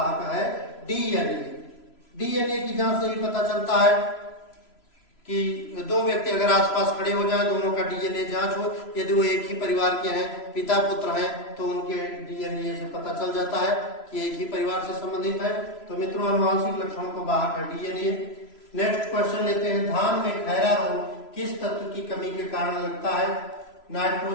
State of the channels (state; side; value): late; right; 3.0 ms